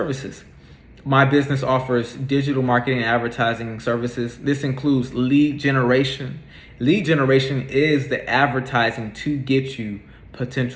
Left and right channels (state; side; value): identical; both; correlation 1.00